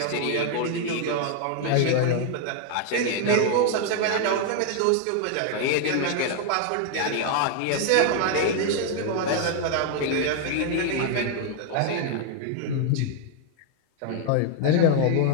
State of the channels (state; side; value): different; both; correlation 0.00